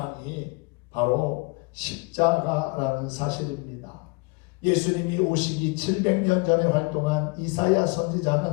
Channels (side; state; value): right; quieter; 28.3 dB